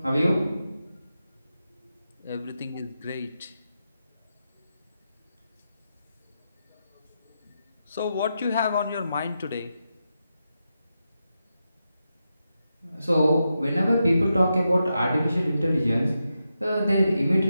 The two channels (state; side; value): inverted; both; correlation -0.87